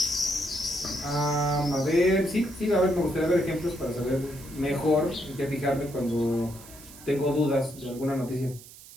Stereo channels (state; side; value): noise; right; hiss, 19 dB below the sound